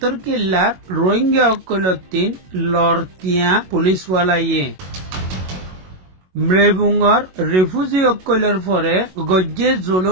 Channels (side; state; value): left; late; 22 ms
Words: কিল্লার রোহিঙ্গা অকলতিন লড়তিয়া পুলিশওয়ালাইয়ে মৃবুঙ্গর রিফিউজি অকলের পরে গজ্জে